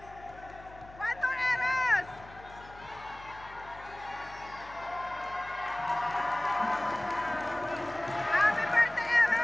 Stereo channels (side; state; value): left; noise; hum, 20 dB below the sound